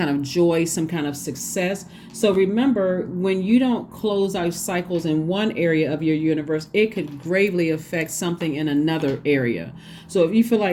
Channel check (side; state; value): both; identical; correlation 1.00